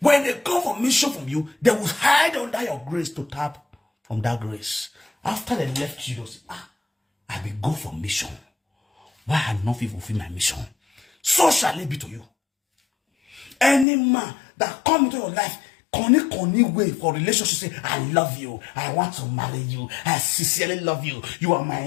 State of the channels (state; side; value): drops out; right; at 13.9 s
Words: they come for mission from you, they will hide under your grace to tap from that grace. After they left you, they say, I will go for mission. why I not fulfill my mission? So shall it be to you. Any man that come into your life, conny way for relationship, say, I love you, I want to marry you, I sincerely love you, you are my